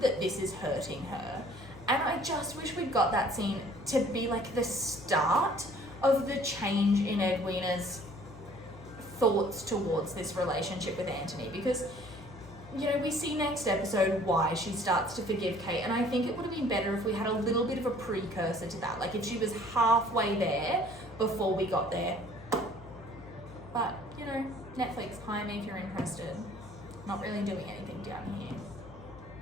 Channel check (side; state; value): left; noise; hum, 17 dB below the sound